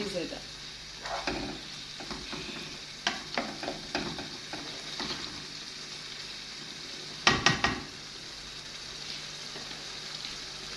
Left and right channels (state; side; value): identical; both; correlation 1.00